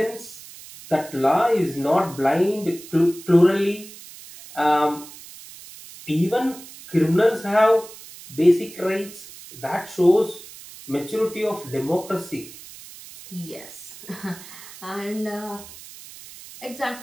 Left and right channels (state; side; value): noise; right; hiss, 17 dB below the sound